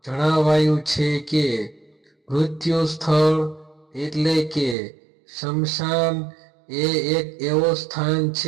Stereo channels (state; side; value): drops out; left; at 4.8 s